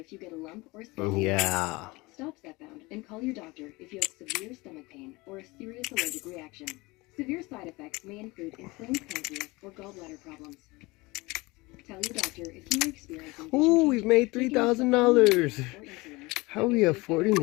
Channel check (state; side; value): quieter; right; 23.2 dB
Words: you get a lump or swelling. Yeah. Stop stepbound and call your doctor if you have severe stomach pain or a serious allergic reaction. Severe side effects may include inflamed pancreas or gallbladder problems. Tell your doctor if you are experiencing. Ooh, we've made $3,000. How are we affording